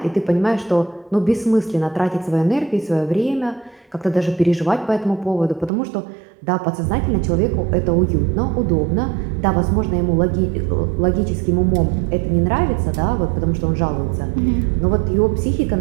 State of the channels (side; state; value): left; drops out; at 5.7 s